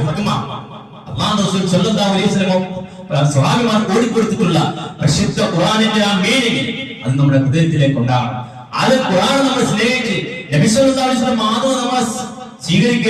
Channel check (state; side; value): identical; both; correlation 1.00